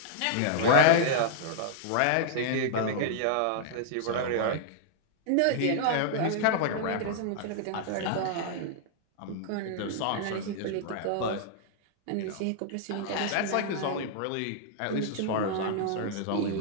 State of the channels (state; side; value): different; both; correlation -0.01